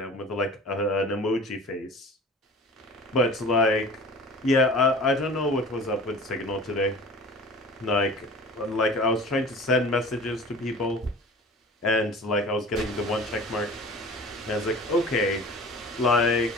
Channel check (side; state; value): both; normal; correlation 0.41